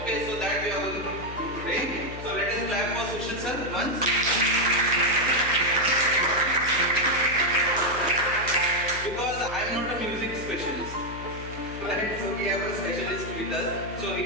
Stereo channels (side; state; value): left; noise; hum, 11 dB below the sound